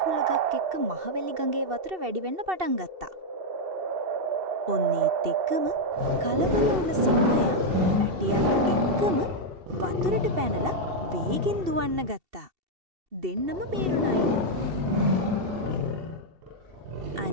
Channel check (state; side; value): late; left; 2.7 ms